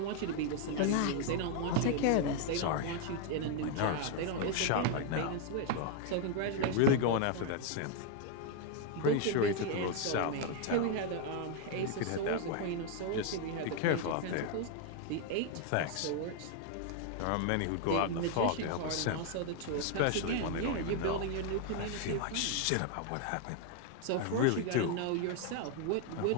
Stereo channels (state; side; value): different; both; correlation 0.00